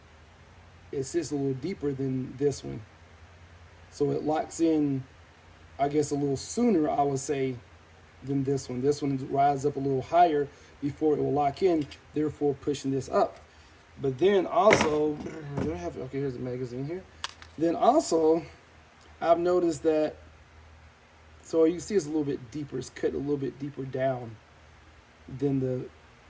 It sits a little deeper than this one. So it locks in, I guess, a little sooner, I would say, than this one. This one rises up a little higher before it will lock in, therefore pushing this up. But then also, okay, here's the magazine here. Then also, I've noticed that, so you see it's a little bit deeper. It's cut a little bit deeper down than the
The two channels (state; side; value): identical; both; correlation 1.00